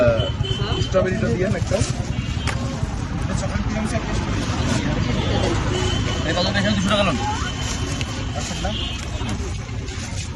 স্ট্রবেরিটা দিয়েন একটা এই কত পয়সা 200 টাকা লোন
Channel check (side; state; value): both; identical; correlation 1.00